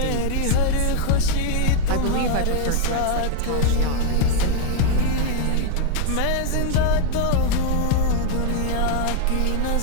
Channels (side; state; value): both; different; correlation 0.00